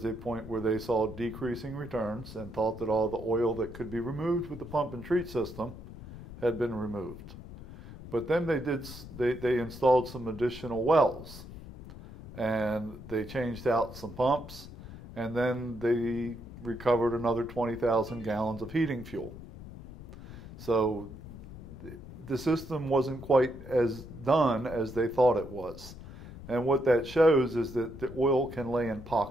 a point where they saw decreasing returns and thought that all the oil that could be removed with the pump and treat system had been removed. But then they installed some additional wells, and they changed out some pumps, and then they recovered another 20,000 gallons of heating fuel. So the system wasn't quite as done as they thought it was. And what that shows is that the oil can lay in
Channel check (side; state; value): left; noise; rumble, 13 dB below the sound